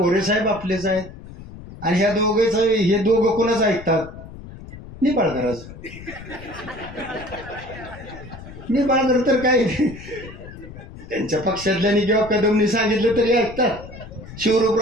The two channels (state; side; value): noise; left; rumble, 15 dB below the sound